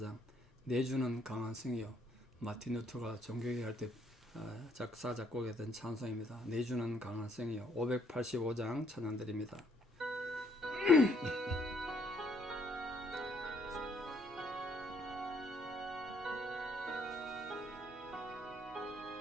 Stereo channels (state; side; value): normal; both; correlation 0.68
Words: 내주는 강한 성이요. 마틴 루터가 종교개혁 할 때 작사 작곡했던 찬송입니다. 내주는 강한 성이요. 585장 찬양 드립니다.